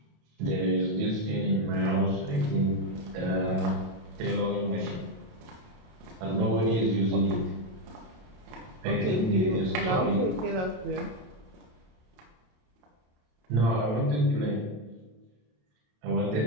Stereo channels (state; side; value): late; left; 28 ms